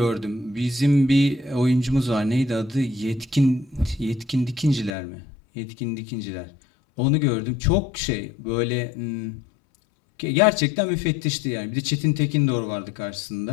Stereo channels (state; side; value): drops out; right; at 4.9 s